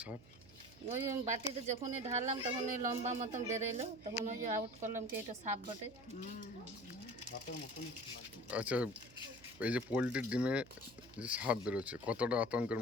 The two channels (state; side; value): noise; right; hum, 22 dB below the sound